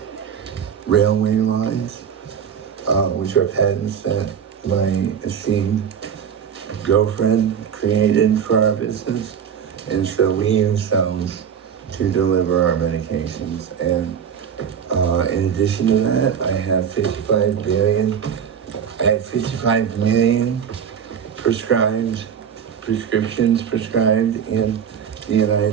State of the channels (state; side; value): quieter; left; 7.8 dB